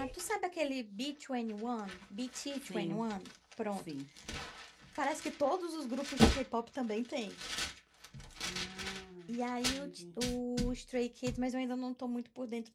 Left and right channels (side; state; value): both; identical; correlation 1.00